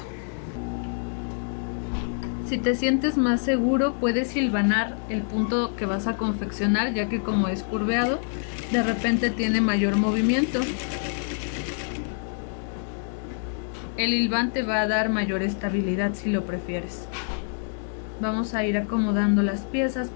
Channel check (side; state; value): right; silent; 61 dB below the other